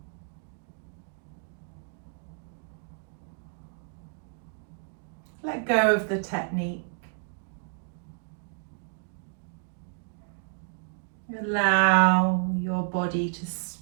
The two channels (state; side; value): silent; left; digital silence